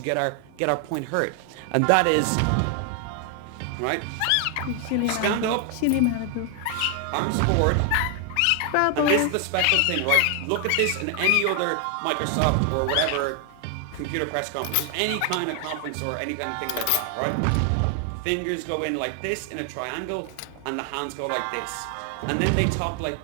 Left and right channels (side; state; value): both; different; correlation 0.00